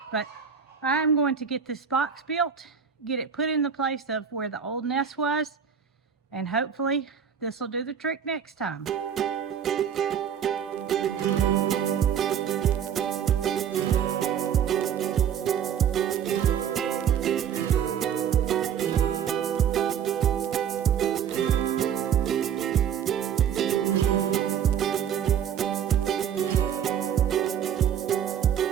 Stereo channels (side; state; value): left; quieter; 8.2 dB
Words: But I'm going to get this box built, get it put in the place of where the old nest was, and hopefully this will do the trick next time.